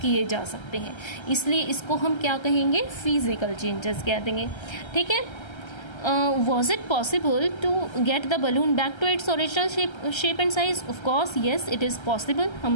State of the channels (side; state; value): right; late; 1.3 ms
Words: जा सकते हैं, इसलिए इसको हम क्या कहेंगे? फिजिकल चेंजेस कह देंगे। ठीक है, was it possible to get the balloon back to its original shape and size? Of course yes, it is possible.